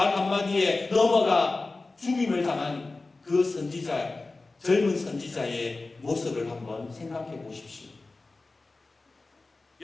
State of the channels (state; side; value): quieter; right; 3.4 dB